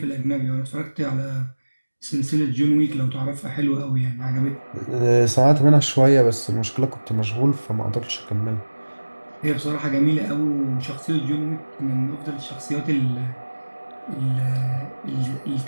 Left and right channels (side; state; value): both; inverted; correlation -1.00